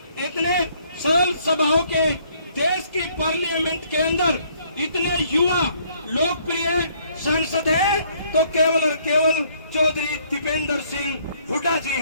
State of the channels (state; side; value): inverted; both; correlation -0.64